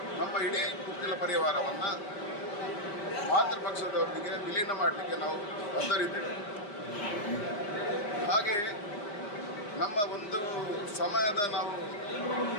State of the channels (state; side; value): late; right; 4.9 ms